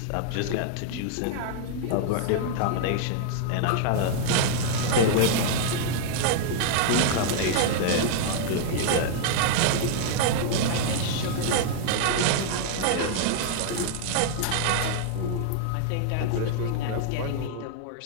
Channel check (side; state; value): both; different; correlation -0.01